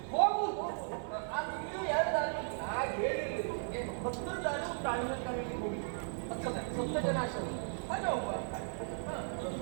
ಹೋಗುವುದು. ಅದು ಇನ್ನೂ 2 ದಾರಿ ಹಾಗೆ ಹೇಳಿರ್ಲಿಲ್ಲ. 10 ದಾರಿ ಉಂಟು ಅಣ್ಣಿನ ಕರೆಯಲ್ಲಿ ಹೋಗಿ ಸಪ್ತ ಜನಾಶ್ರಮ. ಅದೇ ಒಬ್ಬ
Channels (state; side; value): silent; left; digital silence